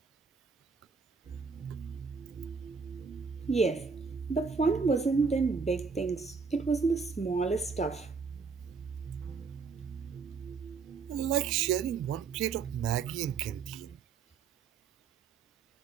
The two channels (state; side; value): quieter; left; 5.2 dB